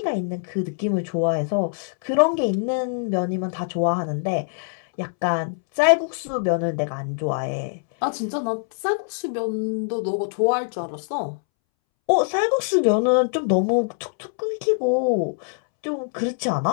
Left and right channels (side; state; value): right; silent; 63 dB below the other